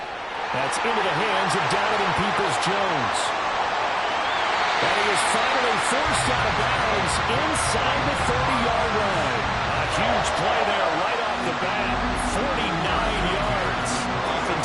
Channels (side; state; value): both; identical; correlation 1.00